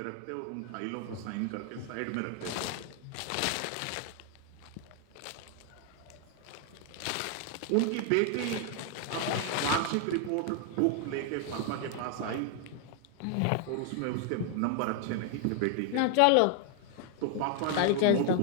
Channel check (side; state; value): both; different; correlation 0.00